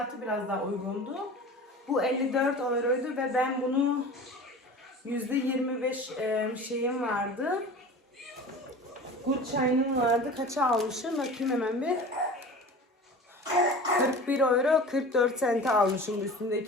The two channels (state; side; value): normal; both; correlation 0.37